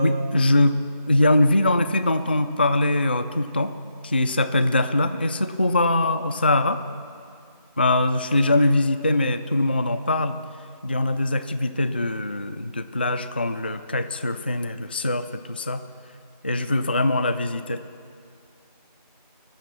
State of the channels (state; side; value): inverted; both; correlation -0.80